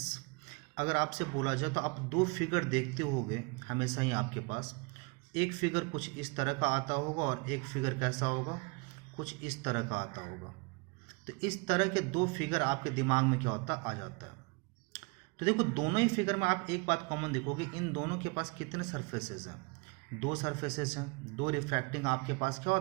अगर आपसे बोला जाए तो आप दो फिगर देखते होगे हमेशा ही आपके पास। एक फिगर कुछ इस तरह का आता होगा और एक फिगर कैसा होगा, कुछ इस तरह का आता होगा। तो इस तरह के दो फिगर आपके दिमाग में क्या होता आ जाता है। तो देखो दोनों ही फिगर में आप एक बात कॉमन देखोगे, इन दोनों के पास कितने सरफेसेस हैं, दो सरफेसेस हैं। दो रिफ्रैक्टिंग आपके पास क्या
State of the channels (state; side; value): quieter; left; 30.4 dB